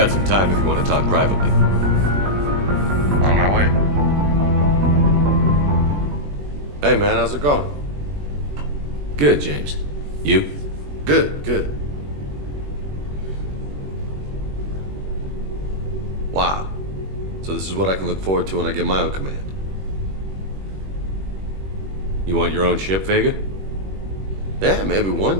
some time if you want to talk privately. On my way. Hey man, how's it going? Good, James. You? Good, good. Wow. So this is what I can look forward to when I get my own command. You want your own ship, Vega? Yeah, maybe one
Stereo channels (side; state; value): left; late; 21 ms